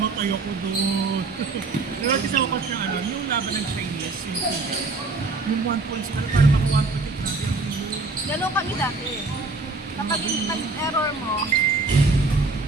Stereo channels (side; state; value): left; quieter; 3.6 dB